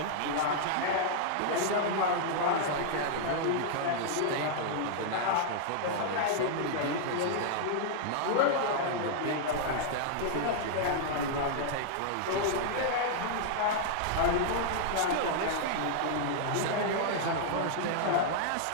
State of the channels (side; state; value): both; different; correlation -0.01